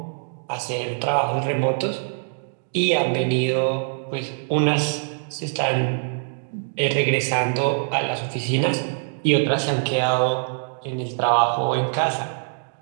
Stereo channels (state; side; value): silent; left; digital silence